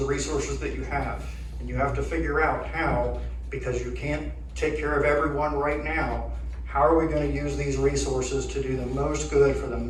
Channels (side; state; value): both; identical; correlation 1.00